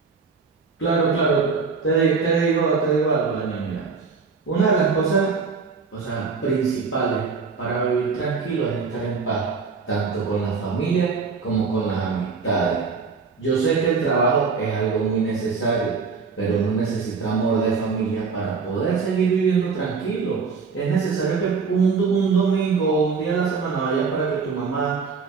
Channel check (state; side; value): quieter; left; 5.0 dB